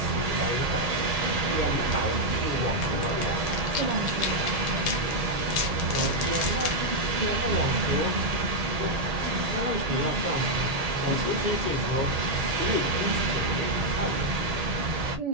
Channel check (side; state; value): left; late; 1.8 ms